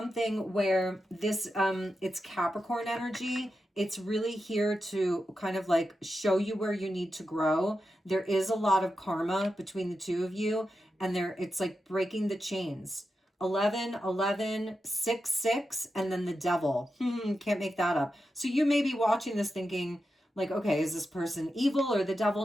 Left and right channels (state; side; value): normal; both; correlation 0.89